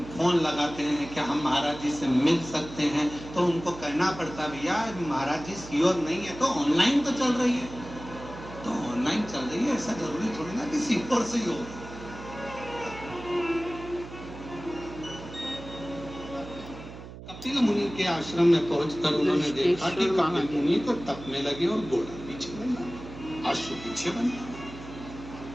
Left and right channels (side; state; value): right; noise; hum, 14 dB below the sound